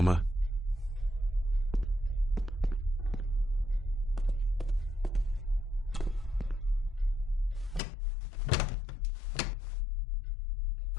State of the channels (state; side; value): drops out; right; at 7.8 s